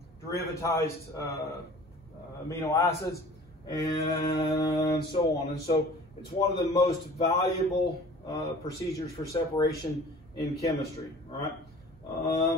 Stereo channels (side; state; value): both; normal; correlation 0.46